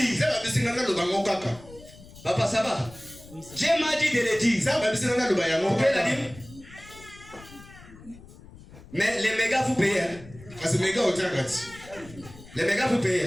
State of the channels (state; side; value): noise; left; rumble, 20 dB below the sound